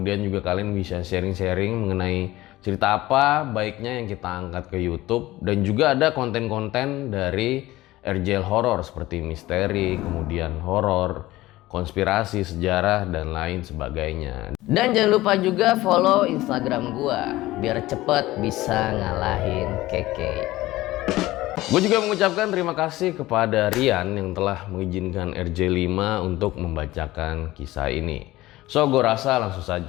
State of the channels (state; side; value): quieter; right; 17.5 dB